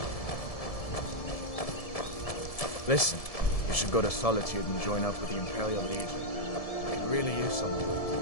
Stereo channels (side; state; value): right; late; 1.7 ms